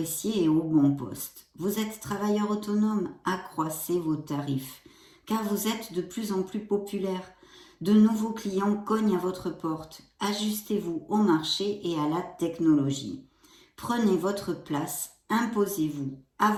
et au bon poste. Vous êtes travailleur autonome, accroissez vos tarifs, car vous êtes de plus en plus populaire. De nouveaux clients cognent à votre porte. Ajustez-vous au marché et à la technologie. Prenez votre place, imposez-vous.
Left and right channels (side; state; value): both; identical; correlation 1.00